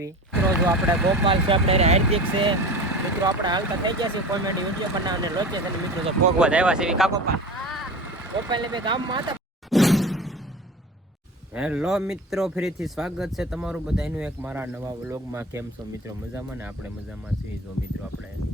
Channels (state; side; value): normal; both; correlation 0.34